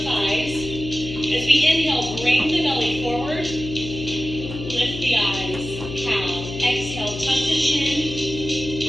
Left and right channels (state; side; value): noise; left; hum, 9 dB below the sound